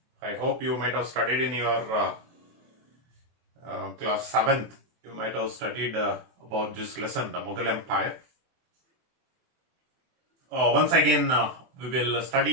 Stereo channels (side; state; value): left; late; 24 ms